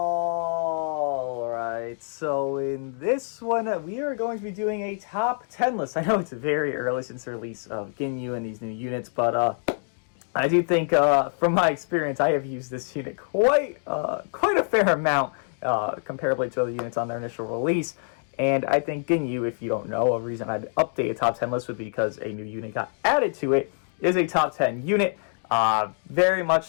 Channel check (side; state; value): right; silent; 61 dB below the other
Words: so in this one, we are going to be doing a top 10 list. I know it's very early since the release of Ginyu and these new units, but I do think, from my experience, I have used this unit quite a fair amount, comparably to other units on their initial release. And I think Ginyu, if you don't know, a reason I'd update a top 10 list would be because a new unit got added to it, is a top 10 unit. Very much